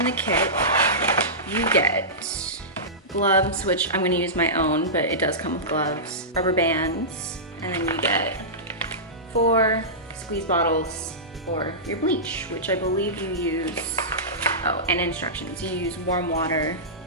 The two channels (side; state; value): both; normal; correlation -0.17